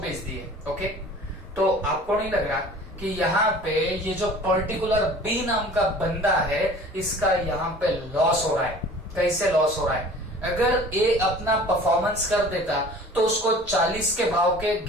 दिए। ओके, तो आपको नहीं लग रहा कि यहाँ पे ये जो पर्टिकुलर बी नाम का बंदा है इसका यहाँ पे लॉस हो रहा है? कैसे लॉस हो रहा है? अगर ए अपना परफॉर्मेंस कर देता तो उसको 40 के भाव के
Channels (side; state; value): both; normal; correlation 0.45